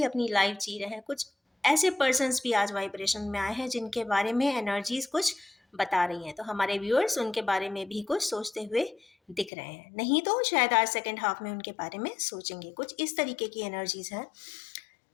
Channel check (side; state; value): right; drops out; at 9.5 s